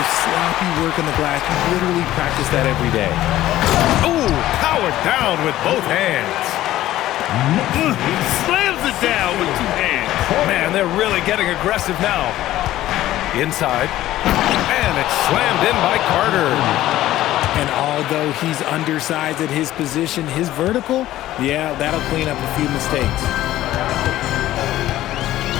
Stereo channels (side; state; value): right; quieter; 14.5 dB